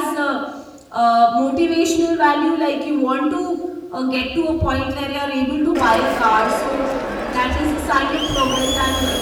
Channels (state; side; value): identical; both; correlation 1.00